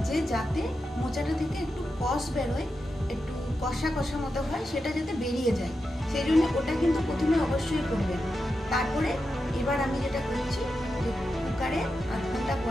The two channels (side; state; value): both; normal; correlation 0.89